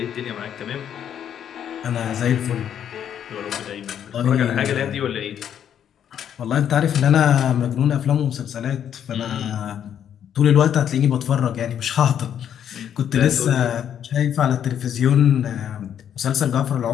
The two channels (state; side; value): quieter; right; 9.3 dB